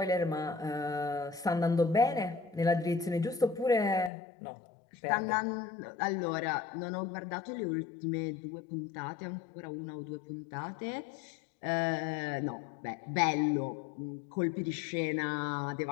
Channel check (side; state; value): right; drops out; at 4.1 s